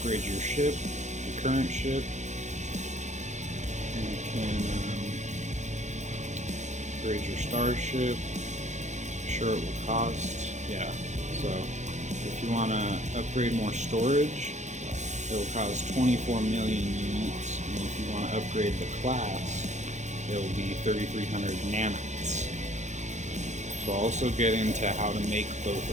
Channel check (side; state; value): left; late; 0.34 ms